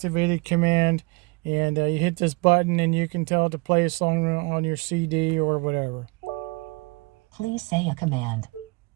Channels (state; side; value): quieter; left; 28.4 dB